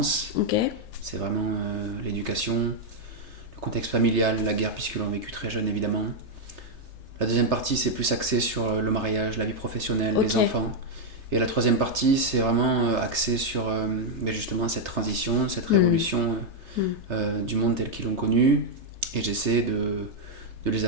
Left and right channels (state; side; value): late; left; 3.3 ms